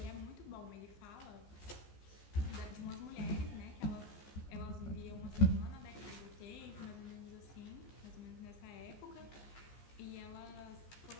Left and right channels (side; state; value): right; late; 14 ms